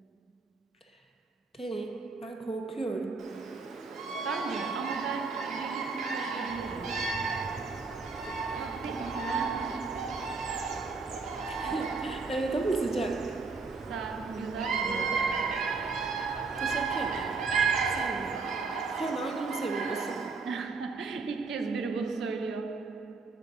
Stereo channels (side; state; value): left; quieter; 4.3 dB